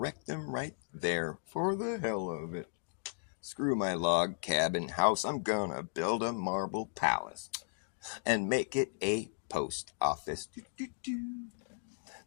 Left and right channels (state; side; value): silent; right; digital silence